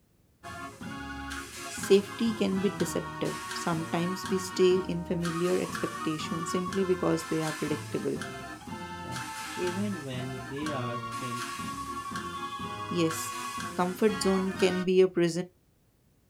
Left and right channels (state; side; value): identical; both; correlation 1.00